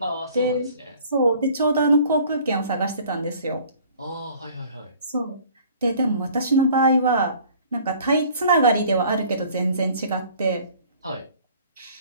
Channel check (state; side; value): inverted; both; correlation -0.52